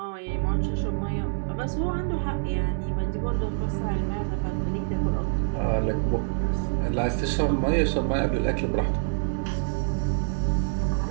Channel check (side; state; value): left; silent; digital silence